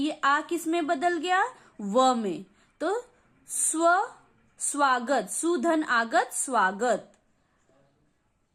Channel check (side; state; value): both; identical; correlation 1.00